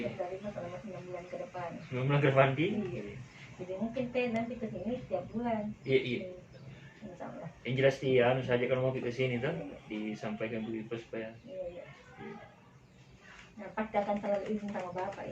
selama 9 bulan ke depan. 9 bulan ke depan Iya. Jadi mungkin nanti ke sini setiap bulan. Iya. Insyaallah. Yang jelas dia saja kalau mau ke sini tuh disampaikan Bu Ipa supaya. Iya. Nah, pasti akan selalu izin sama Bapak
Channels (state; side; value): identical; both; correlation 1.00